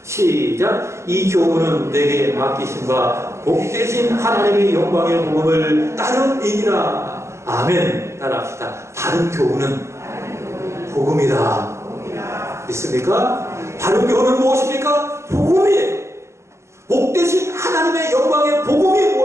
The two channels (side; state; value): left; late; 0.14 ms